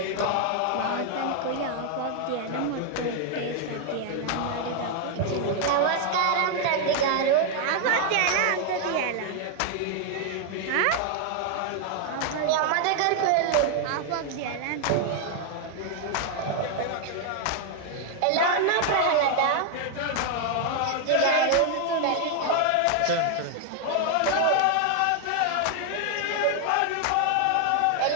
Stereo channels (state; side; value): different; both; correlation 0.00